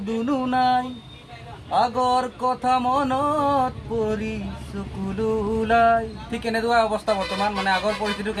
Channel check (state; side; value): identical; both; correlation 1.00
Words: দুনুহ নাই, আগৰ কথা মনত পৰি চকুলো ওলাই। ঠিক এনেকুৱা অৱস্থা বৰ্তমান। আগৰ পৰিস্থিতিটো